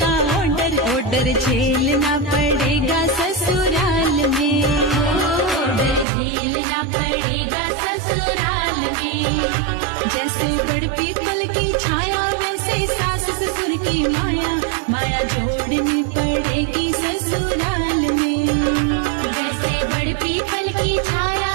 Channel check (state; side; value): drops out; left; at 6.1 s